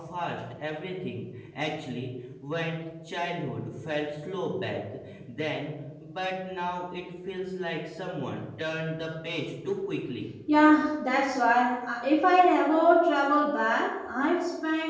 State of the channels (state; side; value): identical; both; correlation 1.00